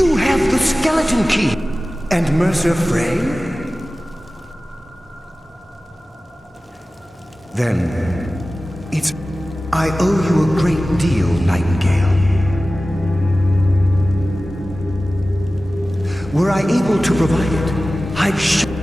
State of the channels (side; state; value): both; normal; correlation 0.96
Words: have the skeleton key! And Mercer Frey? Then, it's... I owe you a great deal, Nightingale. Were I able to provide it, I'd